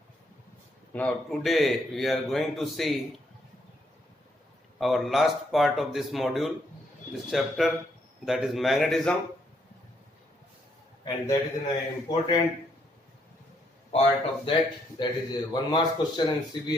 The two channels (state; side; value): normal; both; correlation 0.73